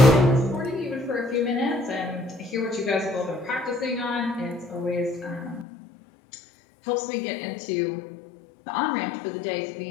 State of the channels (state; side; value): drops out; right; at 5.7 s